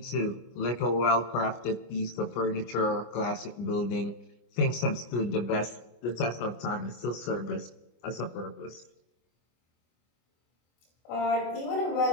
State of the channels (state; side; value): late; right; 25 ms